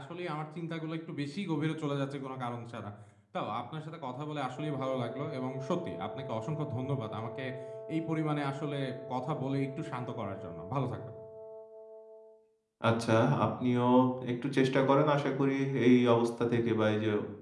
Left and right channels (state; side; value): identical; both; correlation 1.00